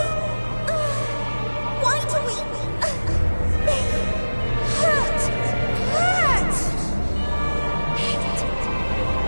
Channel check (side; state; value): both; inverted; correlation -1.00